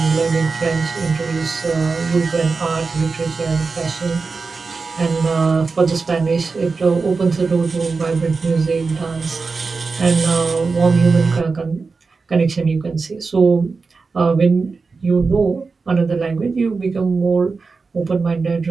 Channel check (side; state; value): left; quieter; 4.4 dB